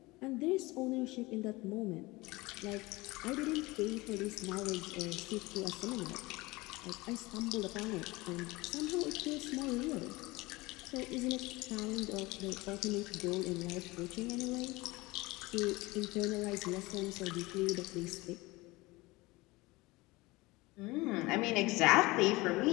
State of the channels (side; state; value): right; quieter; 21.9 dB